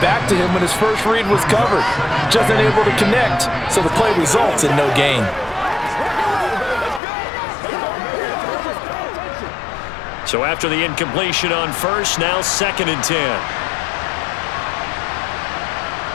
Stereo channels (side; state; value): right; drops out; at 7.0 s